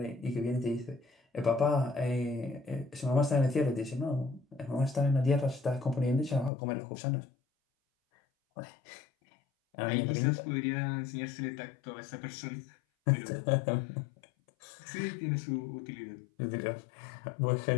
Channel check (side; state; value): right; drops out; at 6.5 s